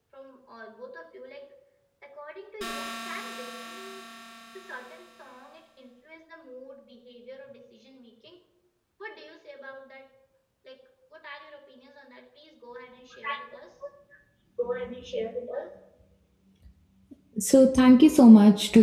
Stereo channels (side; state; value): both; identical; correlation 1.00